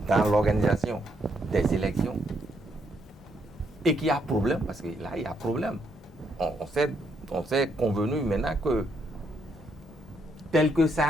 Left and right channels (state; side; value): normal; both; correlation 0.75